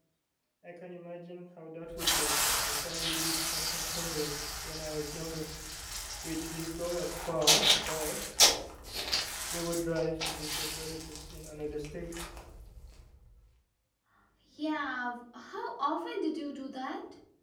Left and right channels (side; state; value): both; identical; correlation 1.00